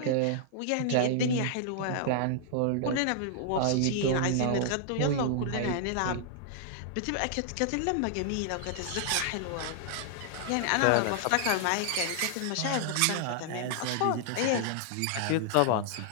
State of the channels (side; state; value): both; different; correlation -0.01